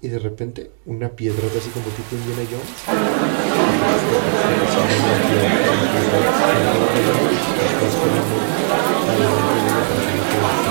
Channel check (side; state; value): left; silent; digital silence